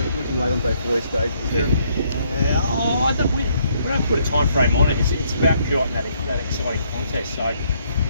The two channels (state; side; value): inverted; both; correlation -0.70